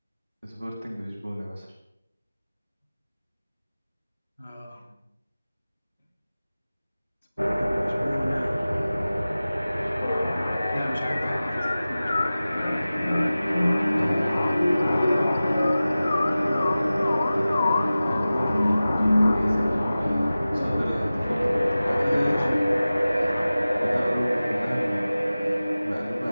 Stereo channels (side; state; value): both; inverted; correlation -0.96